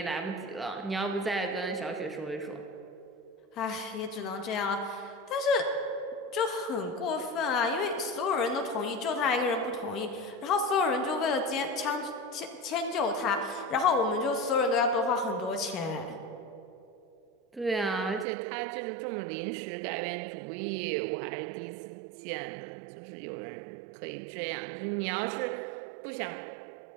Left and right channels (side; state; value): left; drops out; at 18.2 s